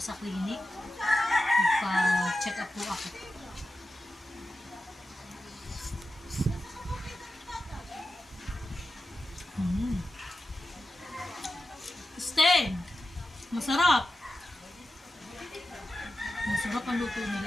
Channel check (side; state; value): both; normal; correlation 0.92